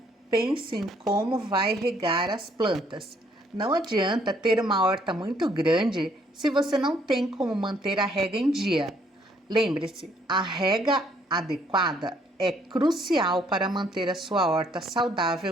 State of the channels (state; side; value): normal; both; correlation 0.66